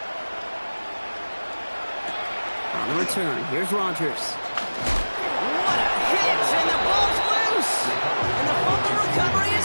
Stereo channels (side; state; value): both; inverted; correlation -1.00